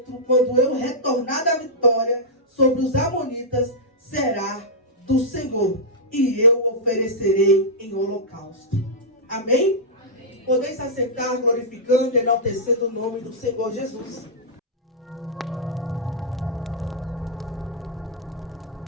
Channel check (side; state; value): both; normal; correlation -0.11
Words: quando eu retornar da vitória sobre os amonitas, será do Senhor, e eu oferecerei em holocausto. Amém? Amém. Podeis se assentar, glorificando e enaltecendo o nome do Senhor Jesus.